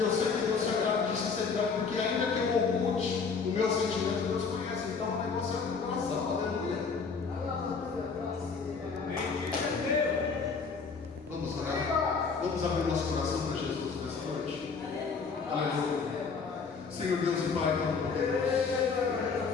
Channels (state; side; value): quieter; right; 5.2 dB